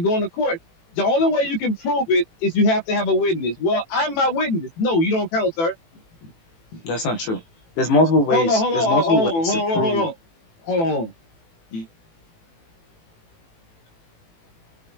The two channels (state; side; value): late; right; 18 ms